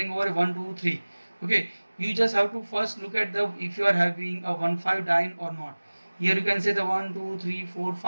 over 1 2 3. Okay, you just have to first look at the if you are having a 1,5 diene or not. Here you can say the 1 2 3 4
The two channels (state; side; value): inverted; both; correlation -1.00